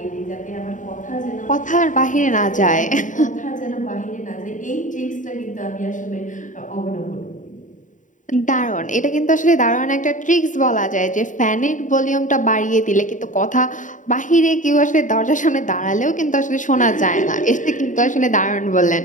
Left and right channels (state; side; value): late; right; 0.37 ms